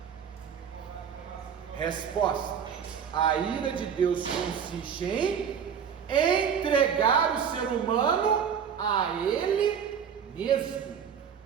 Resposta: a ira de Deus consiste em entregar o ser humano a Ele mesmo.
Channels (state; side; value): quieter; left; 7.5 dB